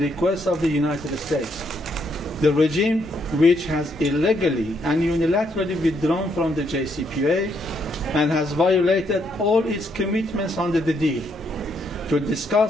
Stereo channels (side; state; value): both; normal; correlation 0.74